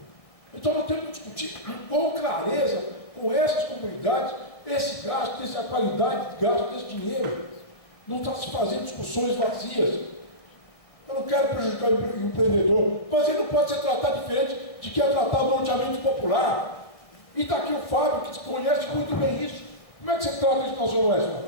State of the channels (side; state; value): right; late; 1.7 ms